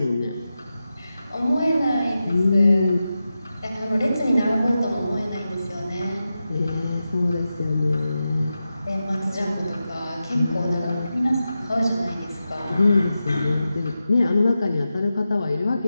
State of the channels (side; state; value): both; inverted; correlation -0.92